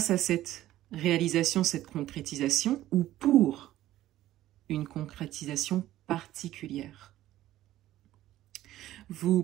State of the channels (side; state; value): left; quieter; 14.3 dB